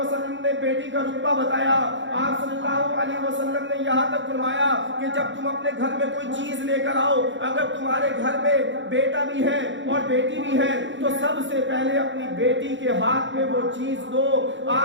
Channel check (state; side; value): late; left; 0.54 ms